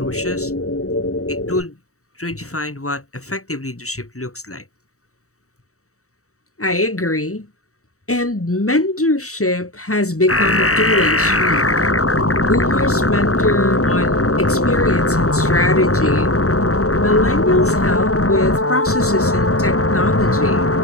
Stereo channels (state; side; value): late; right; 0.65 ms